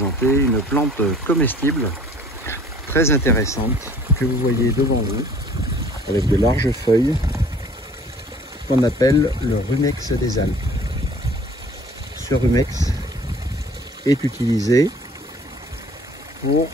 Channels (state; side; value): normal; both; correlation 0.52